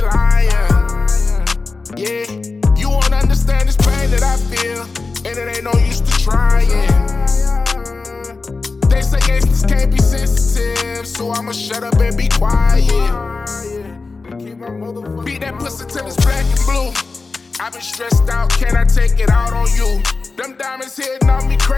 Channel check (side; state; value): right; quieter; 4.0 dB